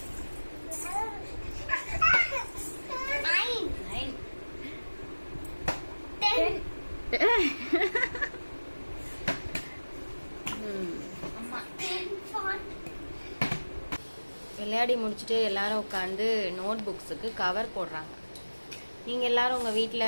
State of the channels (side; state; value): both; inverted; correlation -1.00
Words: விளையாடி முடிச்சுட்டு எல்லாரும் உட்காந்து நோட் புக்ஸுக்கு கவர் போடுறாங்க. நீங்க எல்லாரும் உங்க வீட்டுல